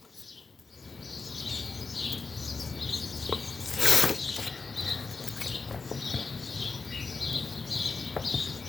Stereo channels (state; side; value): quieter; right; 4.4 dB